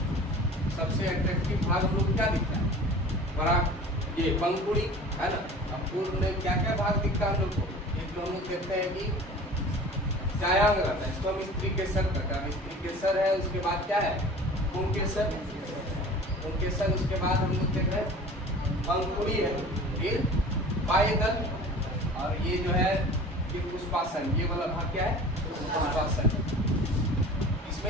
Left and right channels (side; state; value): both; normal; correlation 0.41